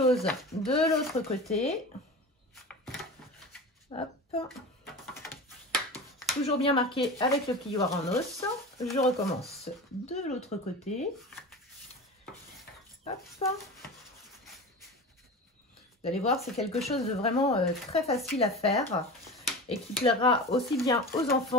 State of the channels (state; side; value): normal; both; correlation 0.31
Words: de l'autre côté. Hop. Toujours bien marqué avec le plioir en os. Je recommence de l'autre côté. Hop. Vous allez voir, c'est quelque chose de vraiment très facile à faire et qui plaira aussi bien aux